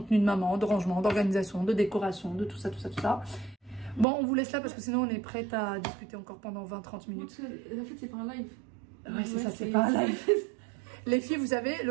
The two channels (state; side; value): drops out; left; at 4.0 s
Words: de maman, de rangement, d'organisation, de décoration, de tout ça. Bon, on vous laisse là parce que sinon on est prête à discuter encore pendant 20-30 minutes. En fait, c'est pas un live. Ouais, c'est ça, c'est pas un live. Les filles, vous savez,